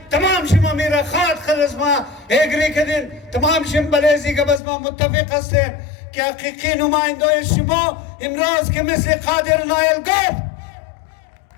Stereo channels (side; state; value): right; drops out; at 4.6 s